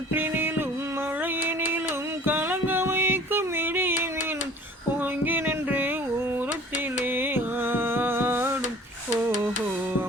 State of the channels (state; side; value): normal; both; correlation 0.48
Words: மழையினிலும் கலங்க வைக்கும் இடியினிலும் ஓங்கி நின்று ஊரத்திலே ஆடும். ஓஹோ,